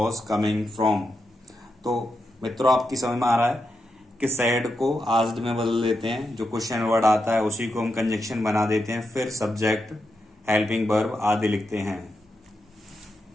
coming from। तो मित्रों आपकी समझ में आ रहा है कि सैड को आस्क्ड में बदल देते हैं, जो क्वेश्चन वर्ड आता है उसी को हम कंजक्शन बना देते हैं, फिर सब्जेक्ट हेल्पिंग वर्ब आदि लिखते हैं।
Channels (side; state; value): both; normal; correlation 0.86